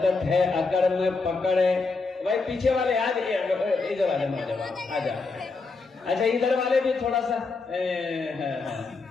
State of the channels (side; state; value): right; quieter; 4.1 dB